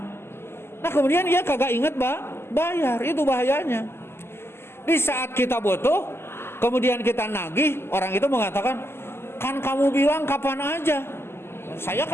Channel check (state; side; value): late; right; 0.12 ms